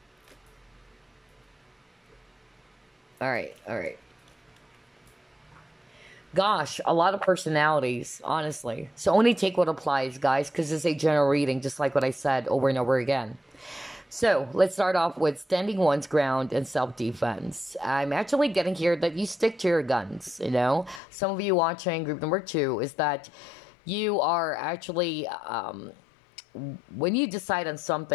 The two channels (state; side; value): drops out; right; at 21.0 s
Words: All right. Gosh, a lot of personalities, honestly. So only take what applies, guys, because it's a general reading, just like what I said over and over again. So let's start off with standing one's ground and self-defense. I'm actually getting here that you stick to your guns, you know. Some of you watching group number 2 is that you are actually... when you decide on